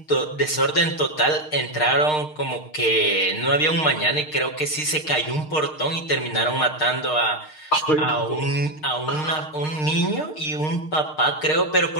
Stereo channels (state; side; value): late; right; 6.5 ms